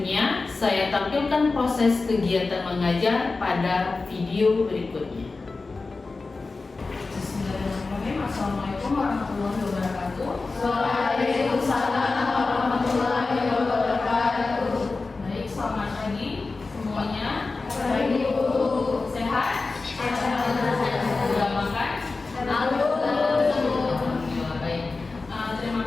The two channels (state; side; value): quieter; right; 3.8 dB